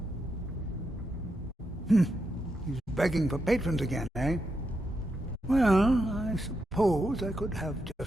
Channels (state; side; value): normal; both; correlation 0.84